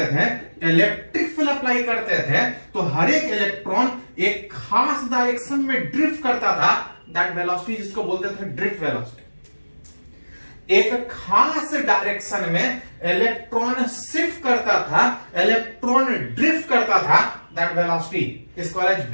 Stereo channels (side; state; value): both; inverted; correlation -1.00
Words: थे, इलेक्ट्रिक फील्ड अप्लाई करते थे तो हर एक इलेक्ट्रॉन एक खास डायरेक्शन में ड्रिफ्ट करता था। दैट वेलोसिटी जिसको बोलते थे ड्रिफ्ट वेलोसिटी। एक खास डायरेक्शन में इलेक्ट्रॉन शिफ्ट करता था, इलेक्ट्रॉन ड्रिफ्ट करता था। दैट वेलोसिटी इसको